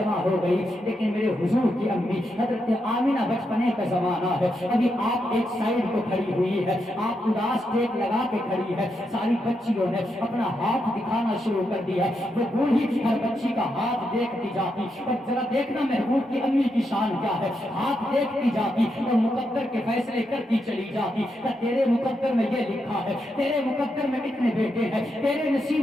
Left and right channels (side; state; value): both; normal; correlation 0.83